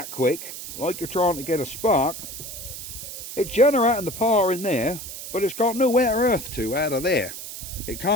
quick, like you're trying to get a spark, it's generating the power in there, but it's got nowhere earth to out of there. It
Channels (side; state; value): right; noise; hiss, 10 dB below the sound